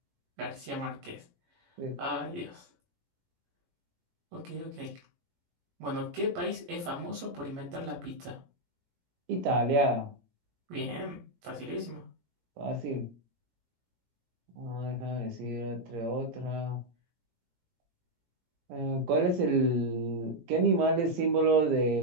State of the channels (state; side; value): late; left; 17 ms